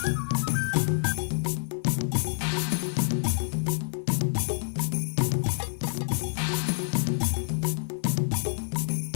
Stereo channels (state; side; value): silent; right; 60 dB below the other